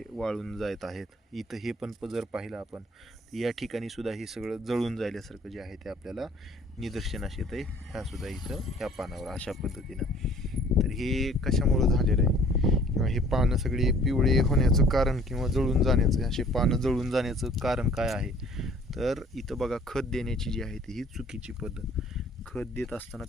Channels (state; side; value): normal; both; correlation 0.54